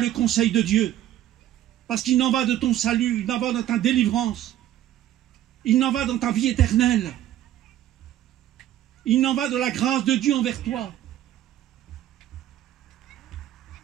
conseil de Dieu, parce qu'il en va de ton salut, il en va de ta délivrance, il en va dans ta vie éternelle, il en va de la grâce de Dieu envers toi.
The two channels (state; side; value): quieter; left; 12.5 dB